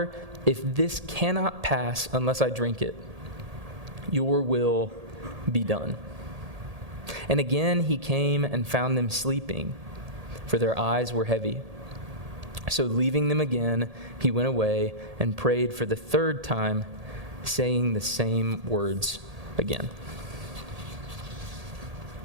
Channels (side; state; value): left; late; 1.8 ms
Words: if this cannot pass unless I drink it, your will be done. And again he came and found them sleeping, for their eyes were heavy. So leaving them again, he went away and prayed for the 3rd time, saying the same words again.